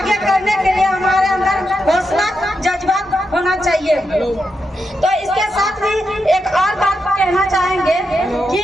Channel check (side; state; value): both; normal; correlation 0.85